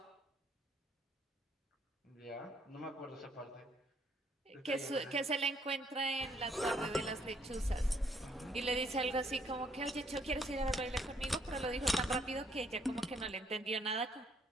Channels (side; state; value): both; normal; correlation 0.68